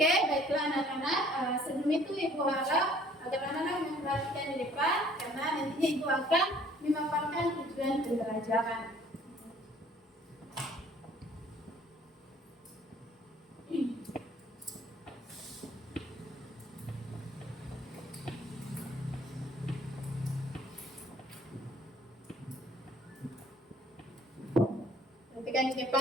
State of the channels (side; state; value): both; normal; correlation 0.57